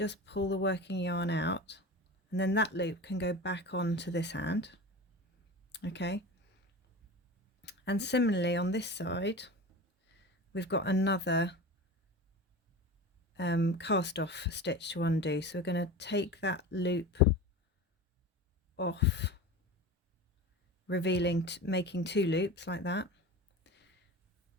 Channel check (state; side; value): normal; both; correlation 0.31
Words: pull the working yarn out, and then that loop can go back onto this hand. Okay. And similarly on this side, we've got another cast off stitch to undo. So we're going to take that loop off, revealing, making two loops like that,